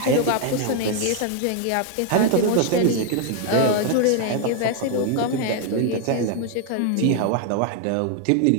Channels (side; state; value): both; different; correlation 0.00